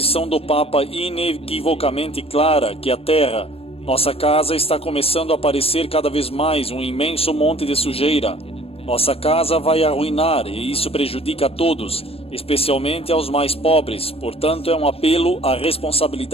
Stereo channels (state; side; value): late; right; 0.28 ms